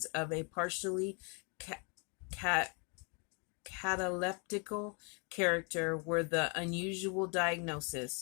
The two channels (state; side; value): quieter; right; 35.5 dB